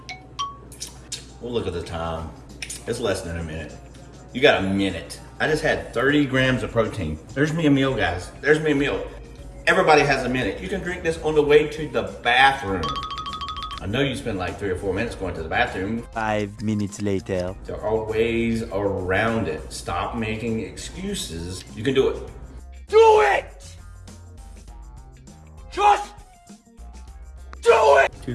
We'll look at the time. It's less than a minute. You got a minute. I just had 30 grams of protein. There's me a meal, guys. There's me a meal. Everybody has a minute. You can drink this on the way to the bathroom. I know you spend like 3 or 4 minutes going to the bathroom. 5 minutes later. There are ways around it. Stop making excuses. You can do it. Do it! Just do it!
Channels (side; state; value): both; identical; correlation 1.00